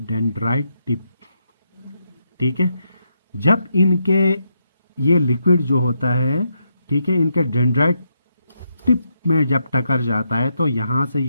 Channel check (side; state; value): both; inverted; correlation -0.81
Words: टिप, ठीक है, जब इनके ये लिक्विड जो होता है, ठीक है, इनके डेंड्राइट टिप में जब टकर जाता है तो यहां से